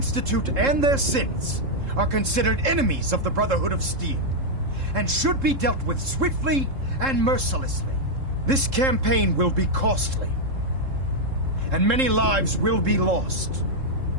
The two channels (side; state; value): left; late; 3.7 ms